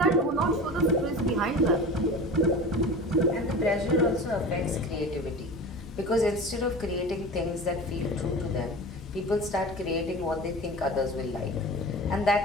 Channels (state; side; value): normal; both; correlation 0.34